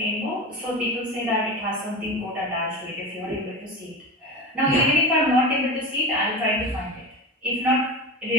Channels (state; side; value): normal; both; correlation 0.26